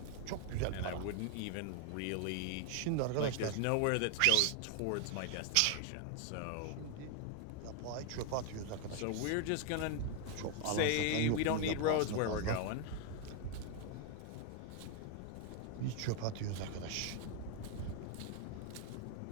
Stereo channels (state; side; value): different; both; correlation 0.01